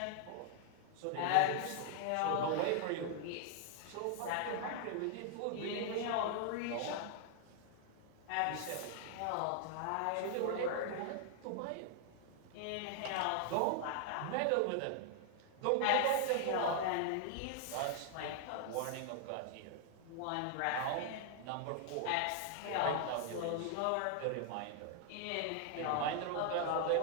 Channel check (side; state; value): both; different; correlation 0.00